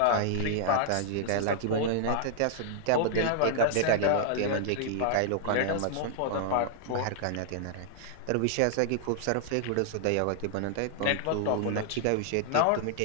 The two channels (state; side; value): different; both; correlation -0.01